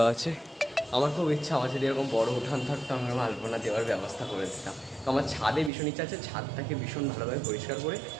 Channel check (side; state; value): left; drops out; at 5.7 s